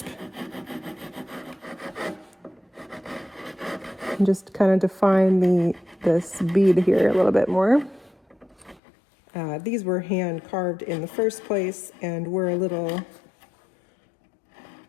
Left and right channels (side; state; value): right; drops out; at 8.8 s